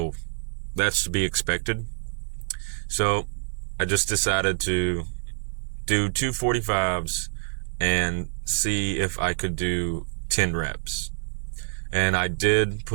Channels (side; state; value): left; silent; digital silence